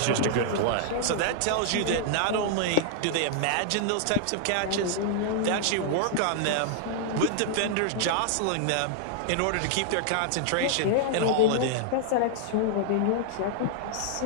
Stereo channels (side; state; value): both; different; correlation -0.01